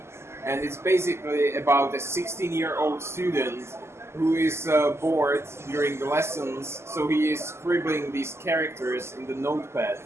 and it's basically about a 16-year-old student who is bored during the lessons, so he is scribbling these characters in the notepad,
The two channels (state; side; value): late; left; 0.13 ms